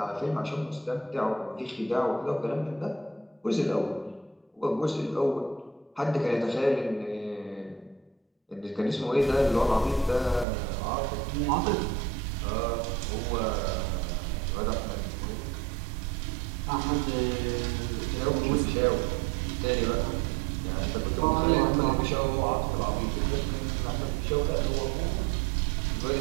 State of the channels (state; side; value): drops out; left; at 10.5 s